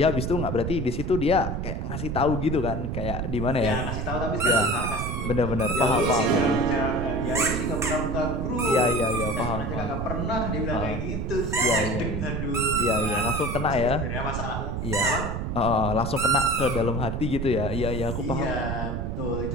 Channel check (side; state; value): right; noise; rumble, 3 dB below the sound